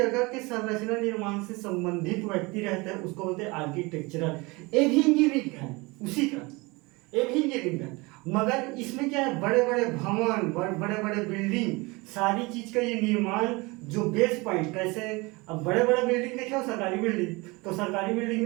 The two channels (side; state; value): left; quieter; 24.9 dB